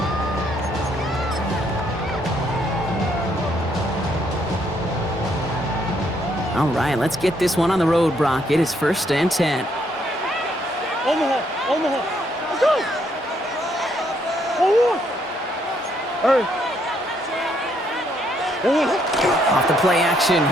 All right, let's get this one on the road, Brock. It is 1st and 10. Omaha! Let's go! Oh, hey! Off the play action,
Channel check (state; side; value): normal; both; correlation 0.71